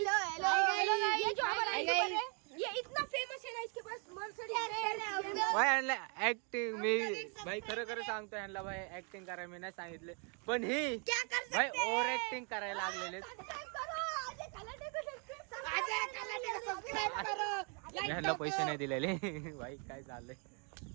ये इतना फेमस है ना, इसके पास मर्सिडीज भाई ह्यांना ऍक्टिंग मी भाई खरं खरं सांगतो ह्यांना भाई ऍक्टिंग करायला मी नाही सांगितले पण ही क्या कर सकते भाई ओव्हर ऍक्टिंग करायला लागलेले. ह्यांना पैसे नाही दिलेले भाई काय चाललंय.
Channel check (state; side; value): quieter; left; 37.3 dB